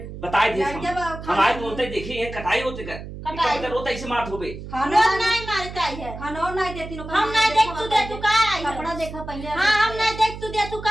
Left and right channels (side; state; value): right; noise; hum, 11 dB below the sound